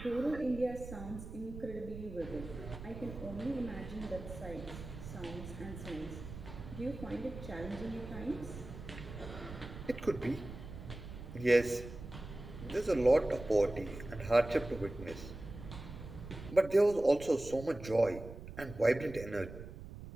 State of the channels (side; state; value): right; noise; rumble, 12 dB below the sound